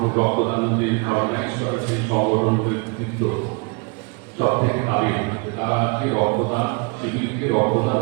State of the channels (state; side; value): quieter; left; 31.0 dB